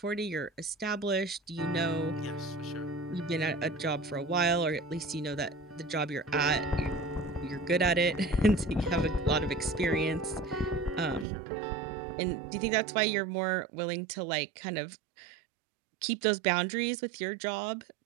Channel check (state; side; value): drops out; left; at 11.2 s